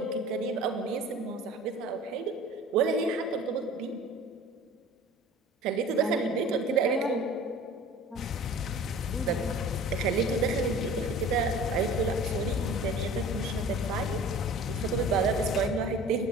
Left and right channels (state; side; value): normal; both; correlation 0.43